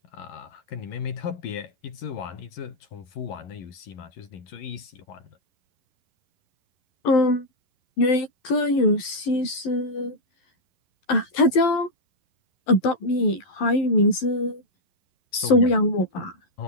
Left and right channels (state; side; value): late; right; 11 ms